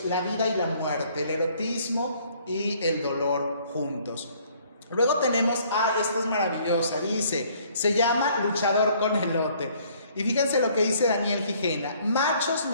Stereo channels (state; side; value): inverted; both; correlation -0.61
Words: la vida y la muerte, el erotismo y el dolor juntos. Luego tenemos, esta es maravillosa, dice, se llama Luchador con elote. Y fíjense lo que dice Daniel Gijena: machos